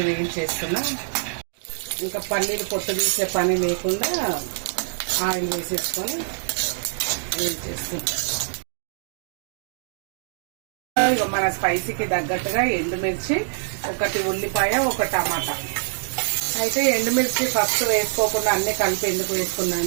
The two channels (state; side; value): silent; left; digital silence